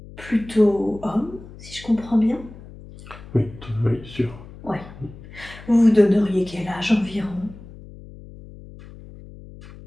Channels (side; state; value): left; noise; hum, 17 dB below the sound